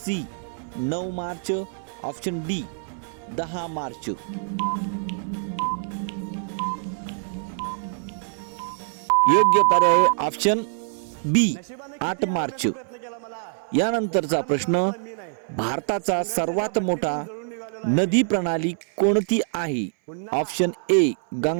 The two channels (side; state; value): left; silent; 62 dB below the other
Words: 9 March, option D 10 March. योग्य पर्याय ऑप्शन बी 8 मार्च. यानंतरचा प्रश्न, भारताचा सर्वात मोठा नदी प्रणाली कोणती आहे? Option A